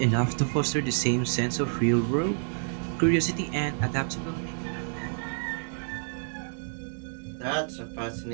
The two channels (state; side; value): silent; left; digital silence